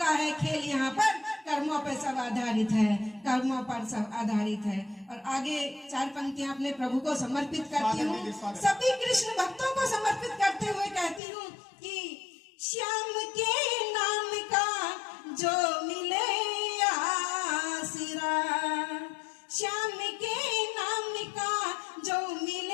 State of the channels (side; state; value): right; drops out; at 11.2 s